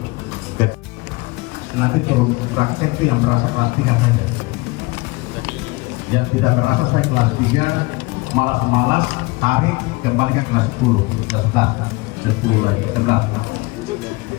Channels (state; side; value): quieter; right; 24.0 dB